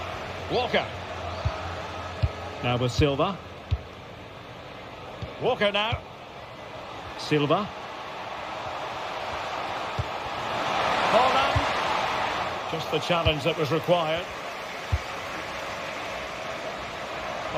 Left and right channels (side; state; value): both; identical; correlation 1.00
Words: Walker. Now with Silva. Walker now. Silva. Holland. Just the challenge that was required.